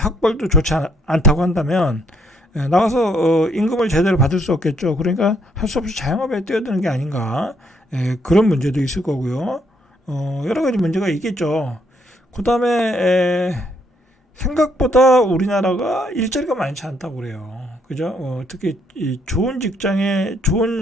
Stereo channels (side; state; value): both; normal; correlation 0.70